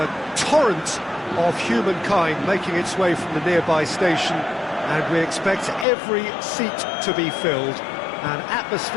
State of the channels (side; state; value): right; drops out; at 5.9 s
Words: torrent of humankind making its way from the nearby station, and we expect every seat to be filled. An